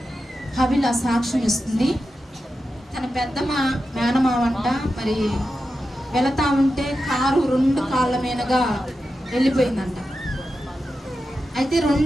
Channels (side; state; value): both; normal; correlation 0.90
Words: హబిల సాక్ష్యం ఇస్తుంది. తన పెద్ద మేనమావంట మరి వెళతా ఉంటే కారు 2 కాళ్ళ మీదగా వెళ్ళిపోయిందంట. అయితే